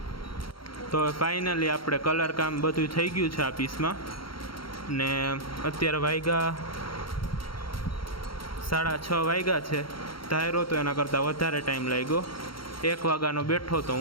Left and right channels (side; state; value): right; late; 0.73 ms